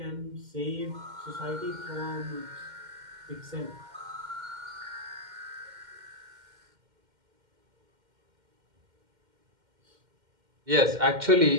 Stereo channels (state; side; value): late; left; 2.1 ms